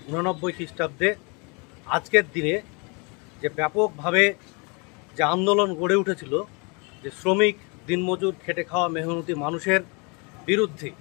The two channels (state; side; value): quieter; right; 31.4 dB